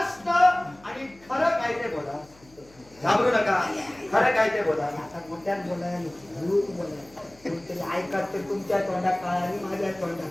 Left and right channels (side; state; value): left; noise; hum, 27 dB below the sound